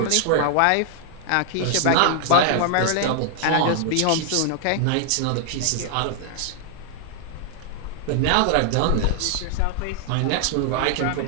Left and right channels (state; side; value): different; both; correlation 0.00